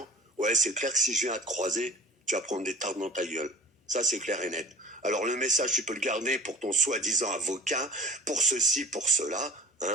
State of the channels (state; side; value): normal; both; correlation 0.42